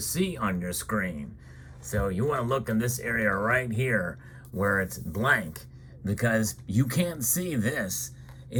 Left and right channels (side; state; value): both; identical; correlation 1.00